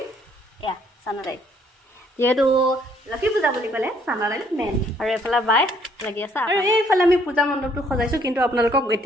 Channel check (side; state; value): both; normal; correlation 0.65